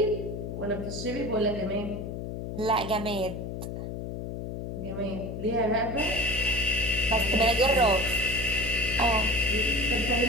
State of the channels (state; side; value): noise; left; hum, 6 dB below the sound